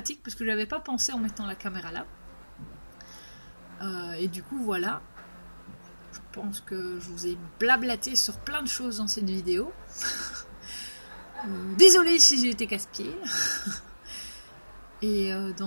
parce que j'avais pas pensé en mettant la caméra là. Et du coup voilà. Je pense que je vous ai blablaté sur plein de choses dans cette vidéo. Désolée si j'ai été casse-pied. Et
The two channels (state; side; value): inverted; both; correlation -1.00